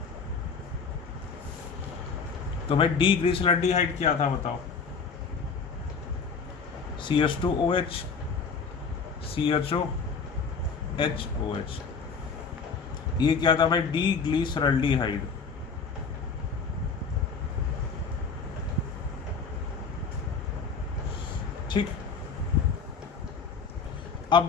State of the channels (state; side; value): quieter; right; 5.3 dB